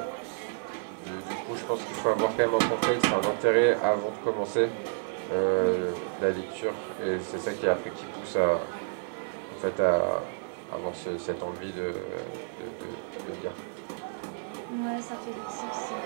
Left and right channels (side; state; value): left; silent; 57 dB below the other